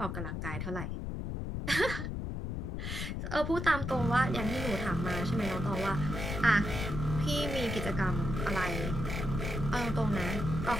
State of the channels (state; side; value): noise; left; rumble, 4 dB below the sound